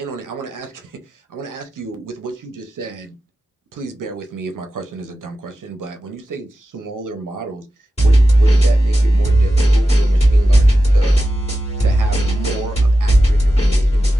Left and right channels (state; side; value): normal; both; correlation 0.92